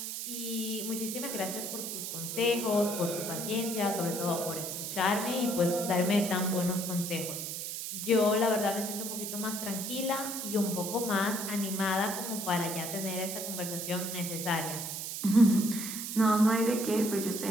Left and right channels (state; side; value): noise; right; hiss, 5 dB below the sound